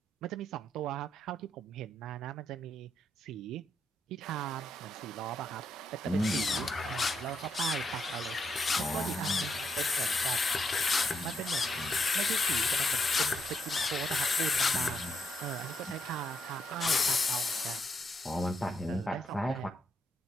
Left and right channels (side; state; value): both; normal; correlation 0.79